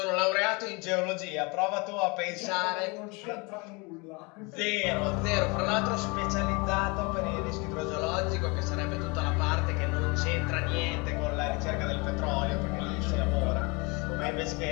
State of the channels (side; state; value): right; quieter; 28.3 dB